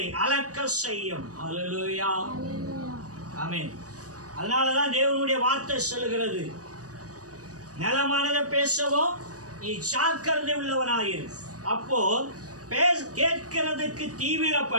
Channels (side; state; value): left; late; 0.67 ms